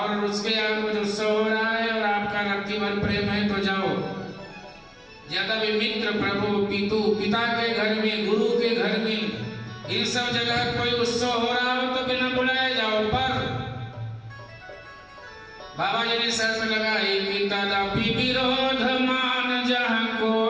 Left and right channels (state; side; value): identical; both; correlation 1.00